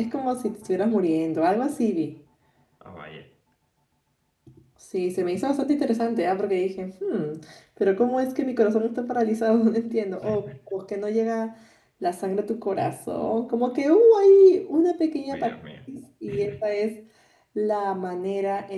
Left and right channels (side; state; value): both; identical; correlation 1.00